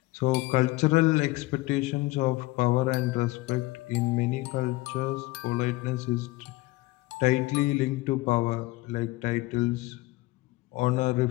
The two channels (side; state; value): right; quieter; 20.4 dB